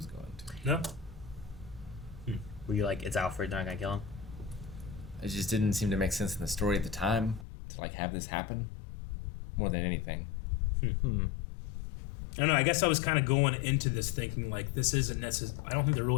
going to. No. Were you like, it's Alfred, they're not gonna kill him? It just didn't seem to make sense in the story at the time to like have this happen more than anything. I don't know. I guess I was kind of going into this thinking like this isn't necessary. I don't think they're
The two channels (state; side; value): drops out; right; at 7.5 s